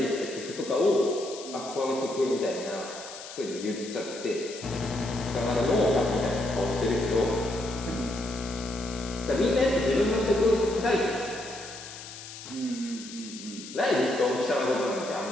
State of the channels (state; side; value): noise; left; hiss, 13 dB below the sound